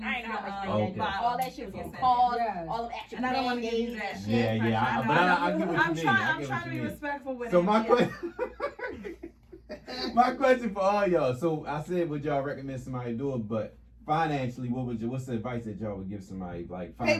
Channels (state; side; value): identical; both; correlation 1.00